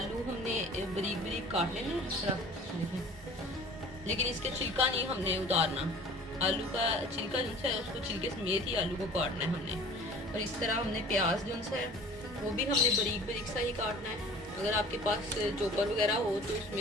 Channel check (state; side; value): normal; both; correlation 0.46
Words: हमने बारीक बारीक काट लेना इस तरह देखें, लेकिन इसका छिलका नहीं हमने उतारना। आलू का छिलका जो है उसको छिलके समेत ही आलू को काटना है हमने। और इस तरह हमने प्याज जो है वो भी हमने बारीक बारीक सा ही काटना है। अगर आपके पास चॉपर वगैरह हो तो